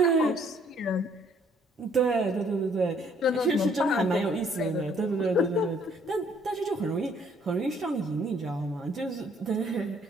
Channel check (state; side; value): normal; both; correlation 0.63